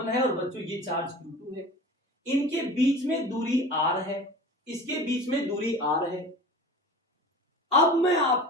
है और बच्चों ये चार्ज Q2 है। इनके बीच में दूरी R है, इसके बीच में दूरी R है। अब मैं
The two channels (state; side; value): normal; both; correlation 0.37